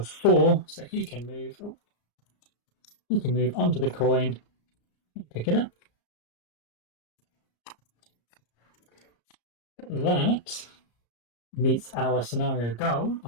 4, so he can move. He can move onto the coin and pick it up. That meets our scenario goal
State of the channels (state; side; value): late; right; 34 ms